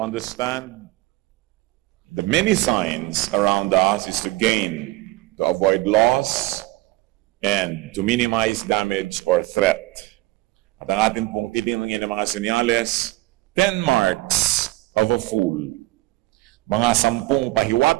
understand the many signs around us is to gain, to avoid loss, and to minimize damage or threat. At ang atin pong titingnan ng mga senyales, 10 marks of a fool. Mga 10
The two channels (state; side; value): quieter; left; 19.1 dB